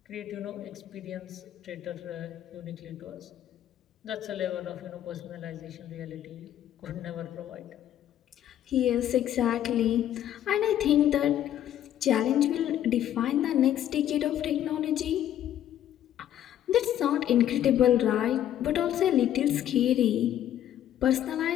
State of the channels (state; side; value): quieter; right; 11.4 dB